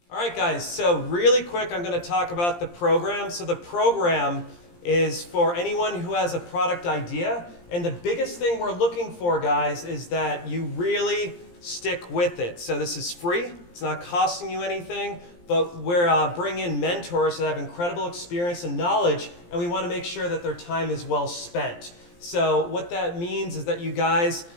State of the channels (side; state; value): right; late; 17 ms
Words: All right, guys, so really quick, I'm going to talk about the program. So the program is for anyone who has a product idea. And the biggest thing we're looking for, guys, is that you really stick with it. So this is free. It's not costing you anything. But we're bringing in mentors that have incredible experience and knowledge, and we want to make sure that their time is well spent. So what that means is that you guys,